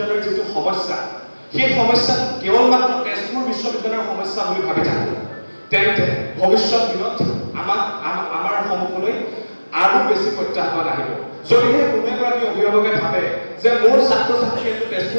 যিটো সমস্যা, সেই সমস্যাটো কেৱল মাত্ৰ তেজপুৰ বিশ্ববিদ্যালয়ৰ সমস্যা বুলি ভাবি থাকোঁ, তেন্তে ভৱিষ্যত দিনত আমাৰ সন্মুখলৈ আৰু বেছি প্ৰত্যাহ্বান আহিব। যদিহে কোনো এগৰাকী অভিভাৱকে ভাবে যে মোৰ ছাত্ৰ ছাত্ৰীয়ে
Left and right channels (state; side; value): inverted; both; correlation -1.00